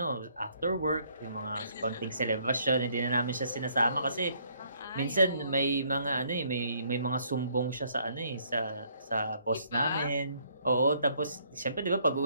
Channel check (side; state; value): both; inverted; correlation -0.66